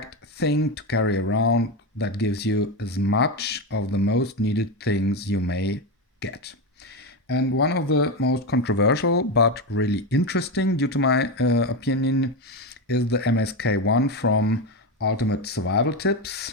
thing to carry around that gives you as much of the most needed things you may get. And one of the most controversial but really interesting, due to my opinion, is the MSK1 from Ultimate Survival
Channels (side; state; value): both; normal; correlation 0.14